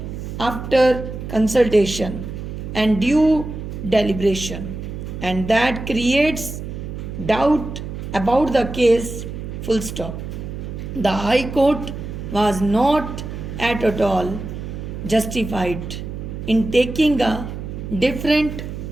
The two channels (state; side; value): noise; right; hum, 8 dB below the sound